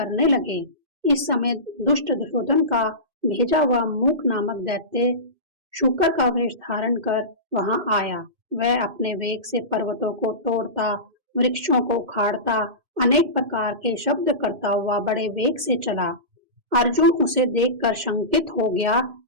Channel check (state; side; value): late; left; 2.5 ms